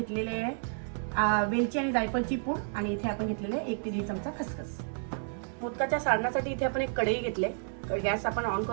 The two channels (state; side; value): silent; left; 57 dB below the other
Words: आहे वेलची आणि जायफळची पूड आणि इथे आपण घेतलेले 1 ते 1.5 चमचा खसखस। मोदकाच्या सारणासाठी इथे आपण एक कढई घेतली, गॅस आपण ऑन